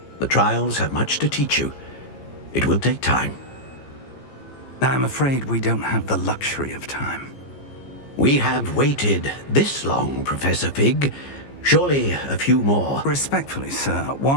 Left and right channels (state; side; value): late; right; 15 ms